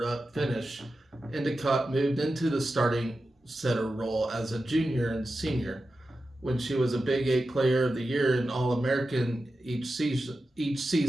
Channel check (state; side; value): normal; both; correlation 0.92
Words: finish. Endicott moved into the starting setter role as a junior and senior, when she was a Big 8 Player of the Year and All-American each